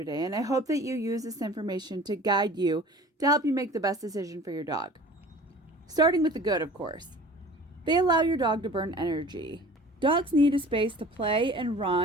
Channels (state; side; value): normal; both; correlation 0.44